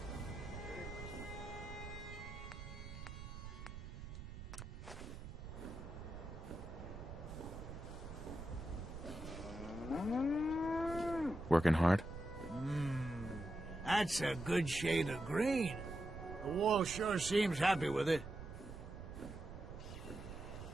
Working hard? That's a good shade of green. The wall sure seems happy with it.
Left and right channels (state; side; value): noise; right; rumble, 10 dB below the sound